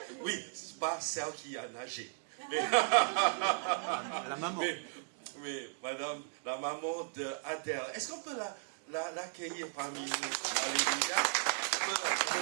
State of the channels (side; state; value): left; silent; digital silence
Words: Oui, c'est pas celle qui a nagé. Mais la maman. Mais Madame, la maman de Adèle. Est-ce qu'on peut l'accueillir parmi nous? Alléluia. On peut